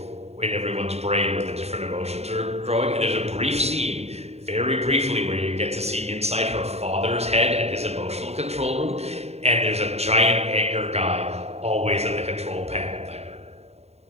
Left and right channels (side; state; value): left; late; 0.31 ms